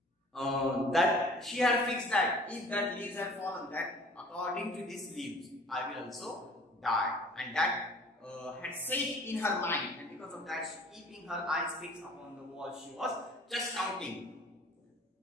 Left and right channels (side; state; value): both; normal; correlation 0.50